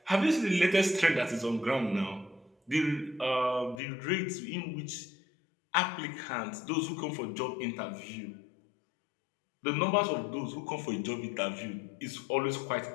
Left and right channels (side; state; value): right; drops out; at 3.8 s